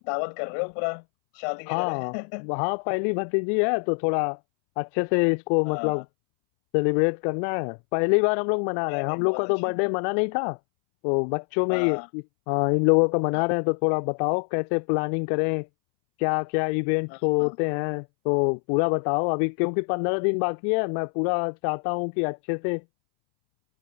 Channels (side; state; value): right; silent; 62 dB below the other